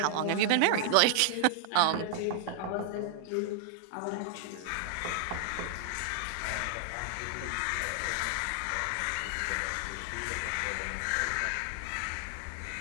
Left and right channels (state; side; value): different; both; correlation 0.00